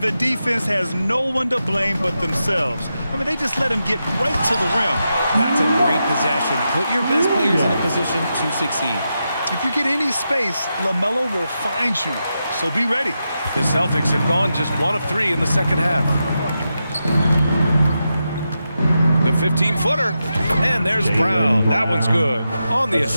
the defense has no one to blame but themselves. I mean, they just let him get right to the rim. That's a great possession. Put your best players in a position to succeed. If you get any space, LaMelo will find you. So be ready. The Celtics have gone just 1 of 3 in the second half. The 15-footer. And there's Brown. That one's good. On the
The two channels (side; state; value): both; inverted; correlation -0.88